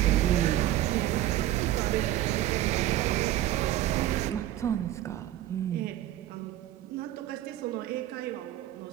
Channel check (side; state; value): left; quieter; 13.5 dB